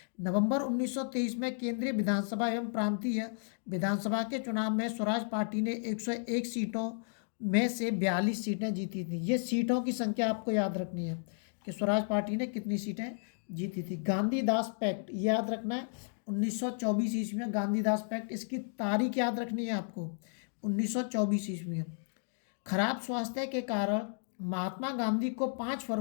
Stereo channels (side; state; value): right; silent; digital silence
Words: नवंबर 1923 में केंद्रीय विधानसभा एवं प्रांतीय विधानसभा के चुनाव में स्वराज पार्टी ने 101 सीटों में से 42 सीटें जीती थी। ये सीटों की संख्या आपको याद रखनी है कि स्वराज पार्टी ने कितनी सीटें जीती थी। गांधीदास पैक्ट याद रखना है, 1924 ईस्वी में गांधीदास पैक्ट। इसकी तारीख याद रखनी है आपको, 1924 ईस्वी में। खराब स्वास्थ्य के कारण महात्मा गांधी को 5